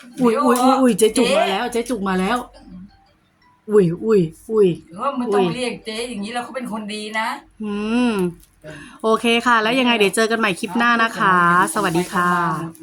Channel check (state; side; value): identical; both; correlation 1.00